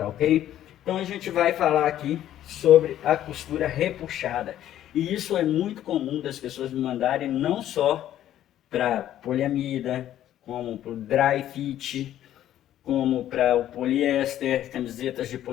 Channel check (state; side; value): quieter; right; 12.0 dB